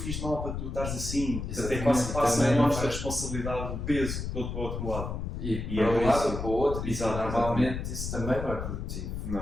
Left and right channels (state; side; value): noise; left; rumble, 5 dB below the sound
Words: de mal para tu estares assim? Até quase passa a nossa responsabilidade, o peso todo para o outro lado. E para um lado ou para o outro, e normalmente isso também não é produtivo,